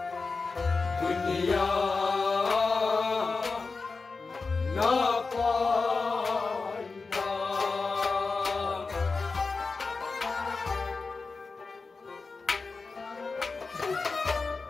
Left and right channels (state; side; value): quieter; right; 4.2 dB